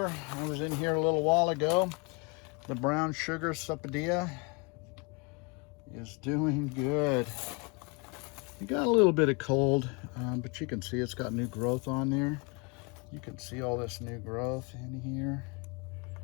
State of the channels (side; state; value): right; quieter; 30.8 dB